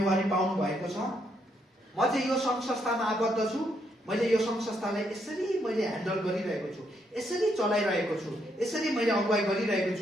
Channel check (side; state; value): both; normal; correlation 0.76